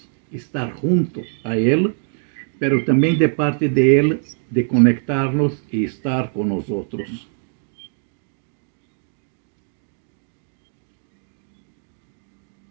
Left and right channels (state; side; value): silent; left; digital silence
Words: estar junto a Ele, pero também de parte de Ele, de conectar-nos e estar com nós outros.